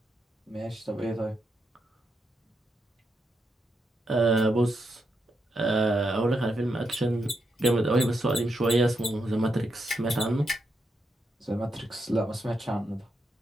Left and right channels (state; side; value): normal; both; correlation 0.83